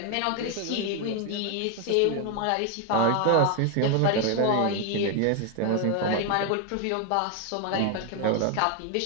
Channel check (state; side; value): different; both; correlation 0.01